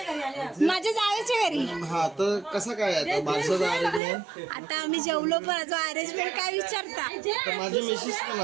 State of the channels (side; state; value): left; drops out; at 4.0 s